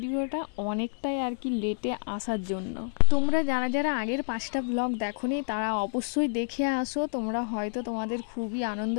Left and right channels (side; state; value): right; silent; 59 dB below the other